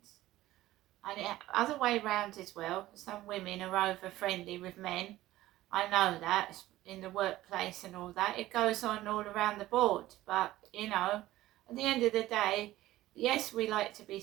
And other way round as well. Some women are over friendly with men. I know that, in the workplace and all that. It goes on all around the board. But, at the end of the day, yes, we like to be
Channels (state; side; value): quieter; left; 15.9 dB